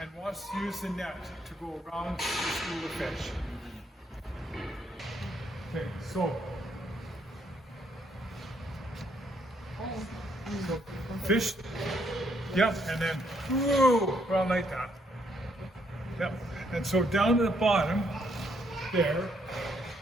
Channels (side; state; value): both; normal; correlation 0.72